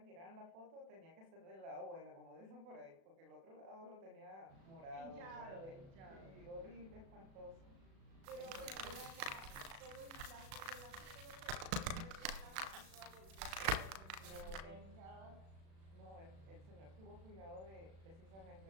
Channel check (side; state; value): left; late; 36 ms